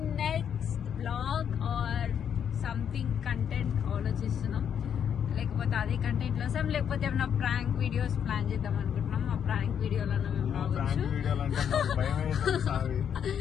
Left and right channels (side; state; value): right; quieter; 8.3 dB